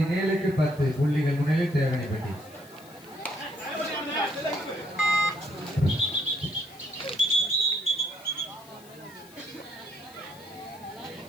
10 புள்ளிகள் முன்னிலையில் தேவனிப்பட்டி.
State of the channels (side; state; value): left; noise; hiss, 23 dB below the sound